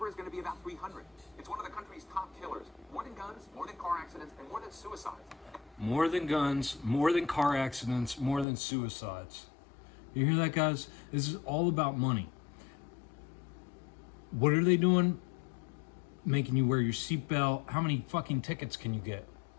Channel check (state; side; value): drops out; right; at 8.5 s